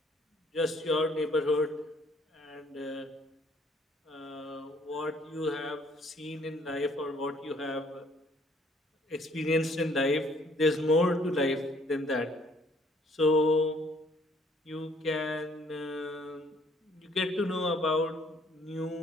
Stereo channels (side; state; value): both; normal; correlation 0.62